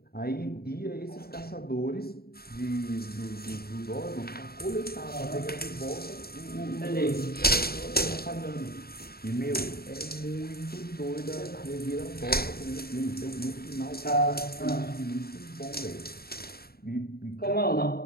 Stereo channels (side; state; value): right; late; 0.45 ms